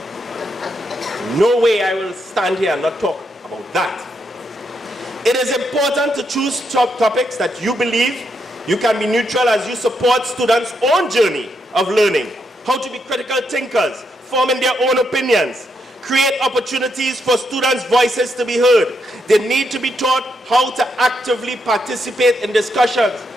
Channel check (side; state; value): both; normal; correlation 0.80